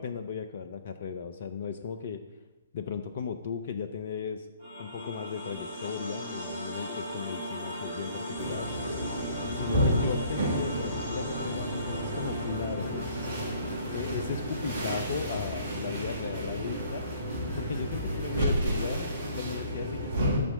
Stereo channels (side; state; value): both; inverted; correlation -0.57